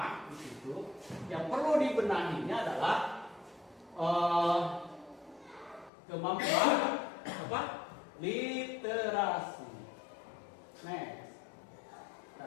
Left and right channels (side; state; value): right; drops out; at 5.9 s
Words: di situ, yang perlu dibenahinya adalah kemampuan apa? Literasi. Next.